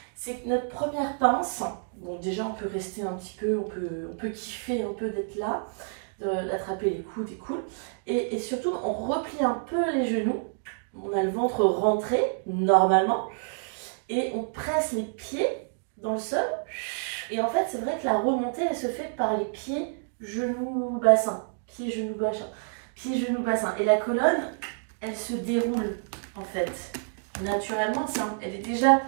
c'est que notre première pince, bon déjà on peut rester un petit peu, on peut kiffer un peu d'être là, d'attraper les coudes et cool, et surtout on replie un peu les genoux, on a le ventre rentré normalement, et on presse les pieds dans le sol, et en fait c'est vrai que la remontée elle se fait par les pieds, genoux, bassin. Pieds, genoux, bassin. Pieds, genoux, bassin. Et la colonne, elle se déroule en fait. Naturellement, elle est déjà...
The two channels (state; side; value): silent; left; digital silence